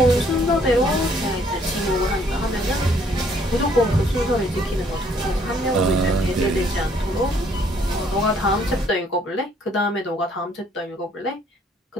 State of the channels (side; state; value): both; normal; correlation 0.64